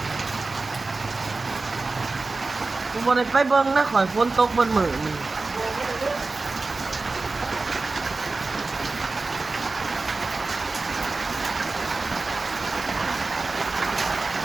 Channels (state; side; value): quieter; left; 3.7 dB